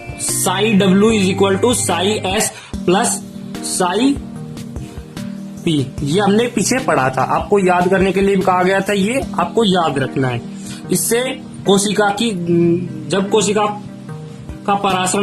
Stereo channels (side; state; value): both; identical; correlation 1.00